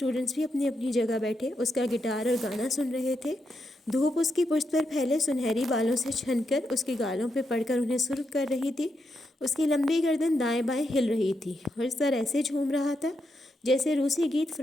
بھی اپنی اپنی جگہ بیٹھے اس کا گٹار اور گانا سن رہے تھے۔ دھوپ اس کی پشت پر پھیلے سنہری بالوں سے چھن کر اس کے گالوں پہ پڑ کر انہیں سرخ کر رہی تھی۔ اس کی لمبی گردن دائیں بائیں ہل رہی تھی اور سر ایسے جھوم رہا تھا جیسے روسی گیت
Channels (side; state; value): both; normal; correlation 0.83